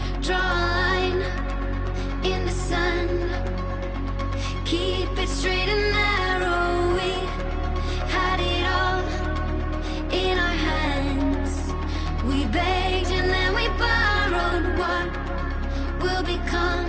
draw a line in the sand, keep it straight and narrow. We had it all in our hands. We begged and then we borrowed. What will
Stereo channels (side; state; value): both; identical; correlation 1.00